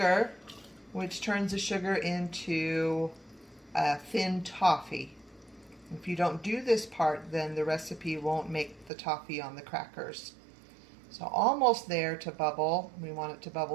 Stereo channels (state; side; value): drops out; left; at 8.9 s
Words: which turns the sugar into thin toffee. If you don't do this part, then the recipe won't make the toffee on the crackers. So almost there to bubble. We want it to